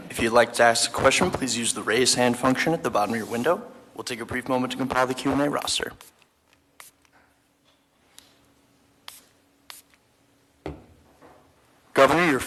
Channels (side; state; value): both; identical; correlation 1.00